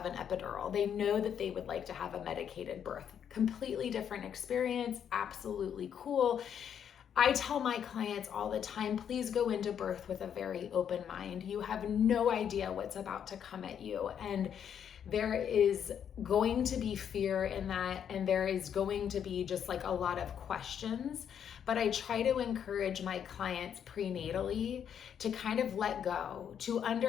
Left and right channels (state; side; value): quieter; right; 8.5 dB